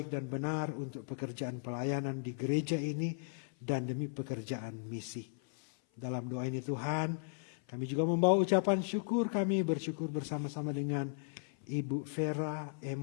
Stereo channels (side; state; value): right; silent; 54 dB below the other